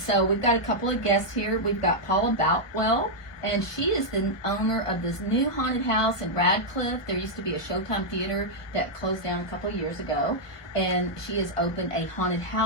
we've got a couple of guests here. We've got Paula Boutwell, and she is the owner of this new haunted house in Radliff. There used to be a Showtime theater that closed down a couple of years ago, and she has opened a haunted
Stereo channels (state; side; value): late; right; 1.2 ms